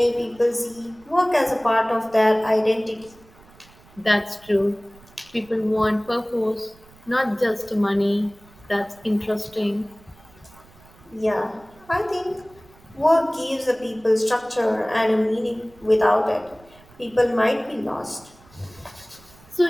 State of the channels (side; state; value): right; noise; rumble, 26 dB below the sound